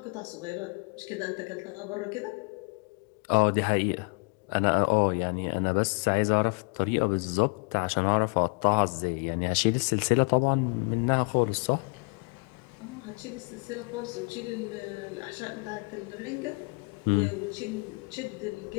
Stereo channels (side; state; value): right; quieter; 32.5 dB